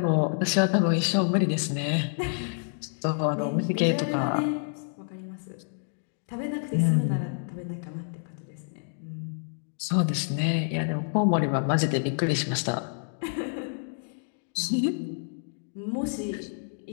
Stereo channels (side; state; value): right; silent; digital silence